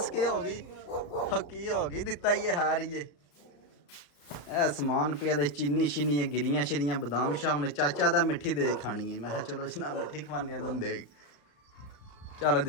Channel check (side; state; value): right; late; 34 ms